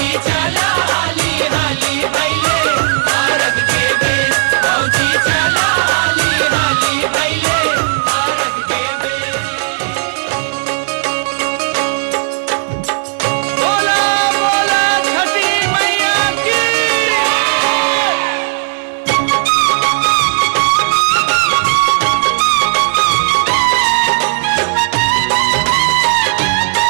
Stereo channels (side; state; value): left; silent; digital silence